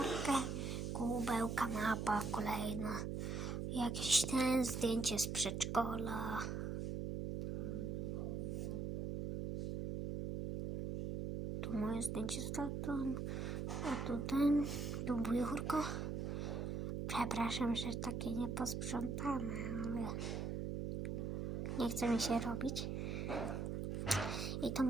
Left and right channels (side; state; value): right; noise; hum, 2 dB below the sound